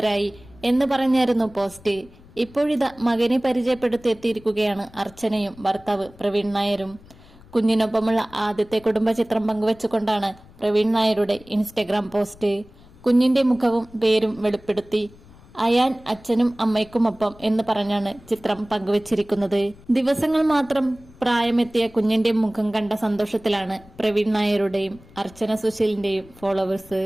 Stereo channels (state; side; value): noise; left; rumble, 23 dB below the sound